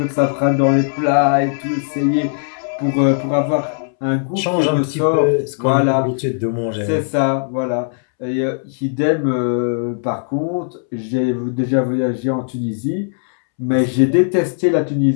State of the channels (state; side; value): silent; right; 67 dB below the other